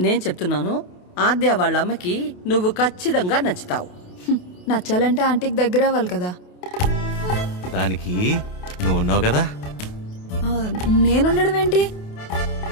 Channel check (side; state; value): right; late; 28 ms